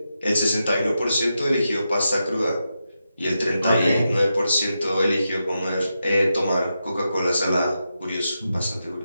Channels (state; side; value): inverted; both; correlation -0.88